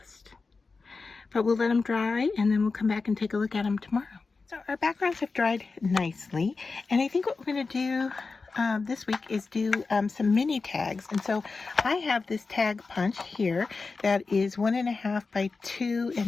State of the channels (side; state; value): right; quieter; 4.2 dB